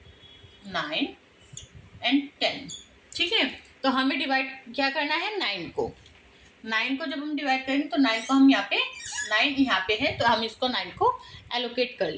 9 एंड 10। ठीक है, तो हमें डिवाइड क्या करना है? 9 को। 9 को जब हम डिवाइड करेंगे तो 9 को हम यहाँ पे 9 यहाँ पे है तो हम इसको 9 को एलोकेट कर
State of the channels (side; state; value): both; identical; correlation 1.00